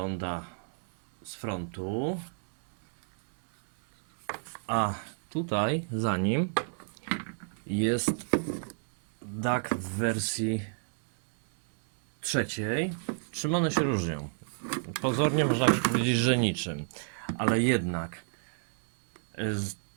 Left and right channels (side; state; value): left; silent; 58 dB below the other